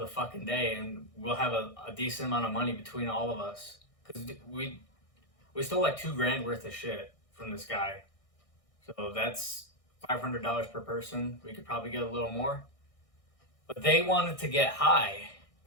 fucking day, and we'll have a decent amount of money between all of us. Because we stole like $2,000 worth of shit from this guy. So that's $500 per person. We could probably get a little more. But they wanted to get high.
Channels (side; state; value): right; late; 1.6 ms